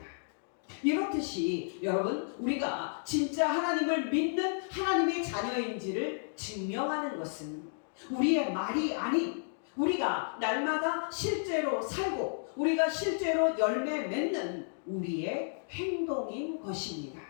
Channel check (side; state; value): right; silent; digital silence